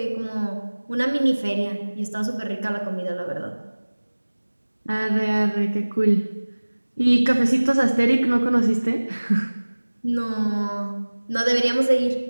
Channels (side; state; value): both; inverted; correlation -1.00